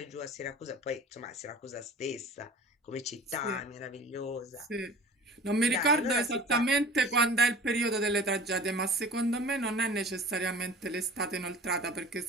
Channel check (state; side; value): normal; both; correlation 0.41